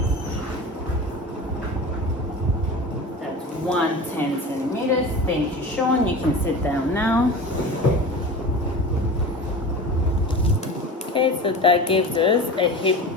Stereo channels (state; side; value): normal; both; correlation 0.33